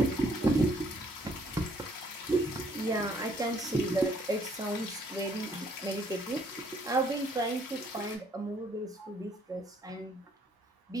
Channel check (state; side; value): normal; both; correlation 0.65